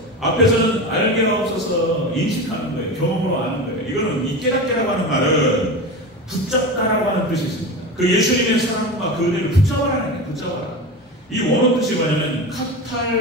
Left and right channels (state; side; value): normal; both; correlation 0.26